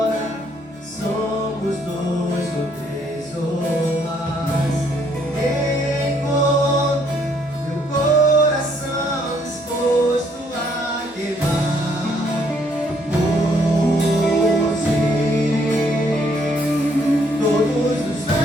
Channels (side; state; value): both; normal; correlation 0.68